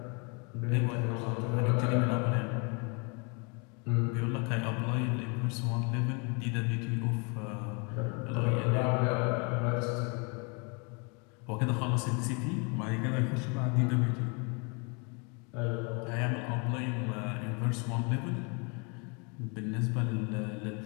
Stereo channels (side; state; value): right; quieter; 33.3 dB